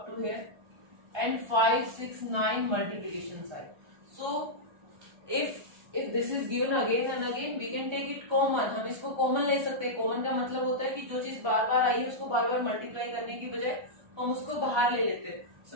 to here, and 5, 6, 9 multiplication sign. So if this is given again and again, we can take it common. हम इसको common ले सकते हैं. Common का मतलब होता है कि जो चीज बार बार आई है उसको बार बार मल्टीप्लाई करने की बजाय हम उसको बाहर ले लेते हैं. सो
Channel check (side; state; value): left; late; 1.3 ms